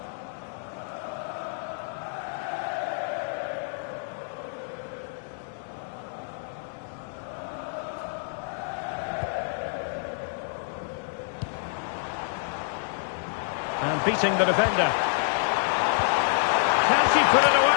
And beating the defender. Can she put it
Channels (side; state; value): right; silent; 59 dB below the other